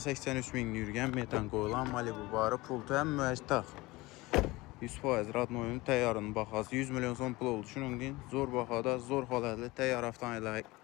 min yürgən metan qoyulan Malibu barı pultu həm müəccitaq. 100% radnoyunun təyyarının baxası 100 milyon son pul oldu. Şunun deyin, zor baxada, zor halətli təyyar avtomobilə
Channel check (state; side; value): quieter; right; 21.1 dB